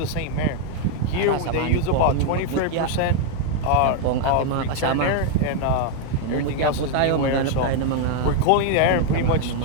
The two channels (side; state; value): both; different; correlation 0.00